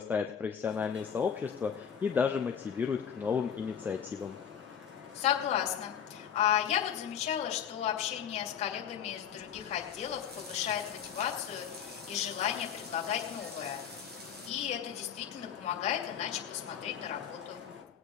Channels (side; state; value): right; quieter; 8.2 dB